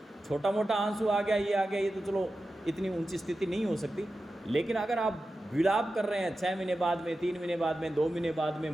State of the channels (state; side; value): normal; both; correlation 0.93